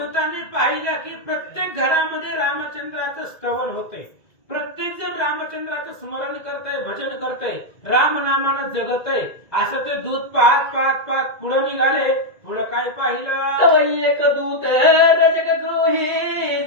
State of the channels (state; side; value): late; right; 2.0 ms